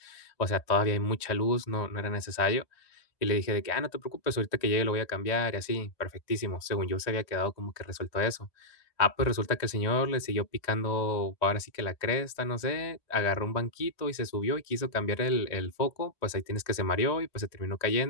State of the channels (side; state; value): right; late; 1.9 ms